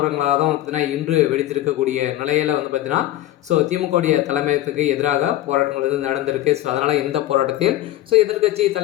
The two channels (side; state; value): right; quieter; 14.3 dB